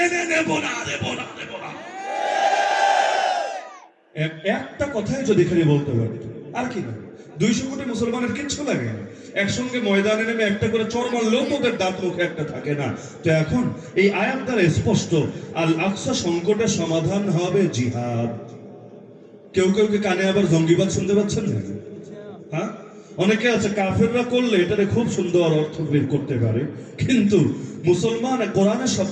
নেব না। একটা কথাই যদি খালি বলতে পারি, আর কি না, 200 কোটি মুসলমানের কিচ্ছু লাগে না। একসঙ্গে ময়দানে নেমে একটা করে চড় মারলেও তোদের দাঁত মুখে একটা থাকে না। তো এখন এই আয়াত দ্বারা স্পষ্ট, আল আকসা সংকটের সমাধান হবে জিহাদ। কেউ কেউ কে কানে আবার জঙ্গিবাদ শুনতে পাচ্ছেন না? হ্যাঁ, অনেকে আছে কাফেররা করলে এটারে খুব সুন্দর অর্থ বের করতে পারে, কিন্তু মুসলমান কোরআনের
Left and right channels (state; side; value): identical; both; correlation 1.00